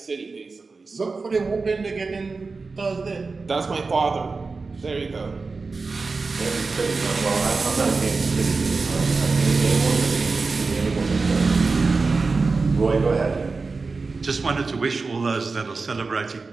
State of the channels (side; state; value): left; quieter; 4.1 dB